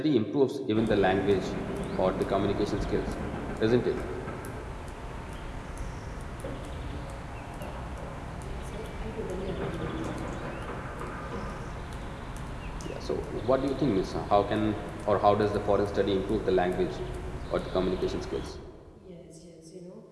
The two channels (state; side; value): identical; both; correlation 1.00